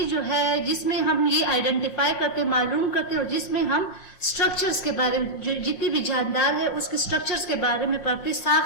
जो है जिसमें हम ये आइडेंटिफाई करते, मालूम करते और जिसमें हम स्ट्रक्चर्स के बारे में, जो जितनी भी जानदार है उसके स्ट्रक्चर्स के बारे में पढ़ते,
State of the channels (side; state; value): right; late; 5.6 ms